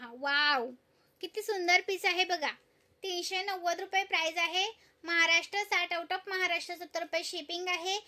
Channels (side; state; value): both; identical; correlation 1.00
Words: वाव किती सुंदर पीस आहे बघा। 390 रुपये प्राइस आहे। महाराष्ट्र 60 आउट ऑफ महाराष्ट्र 70 रुपये शिपिंग आहे।